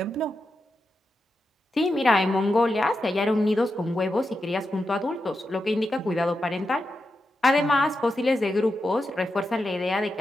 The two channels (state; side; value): normal; both; correlation 0.88